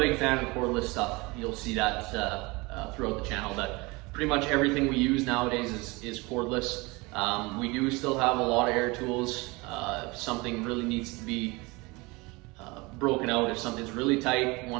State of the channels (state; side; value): quieter; left; 24.7 dB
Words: fan of cordless stuff. You'll see that throughout the channel, that pretty much everything we use nowadays is cordless. We do still have a lot of air tools. If something really needs to be broken out, if something's really tight,